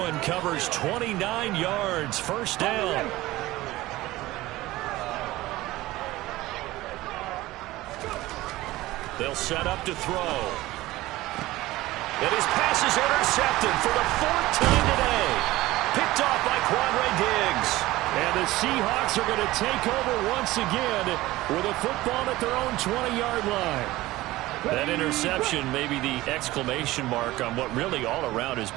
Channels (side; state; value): left; quieter; 17.9 dB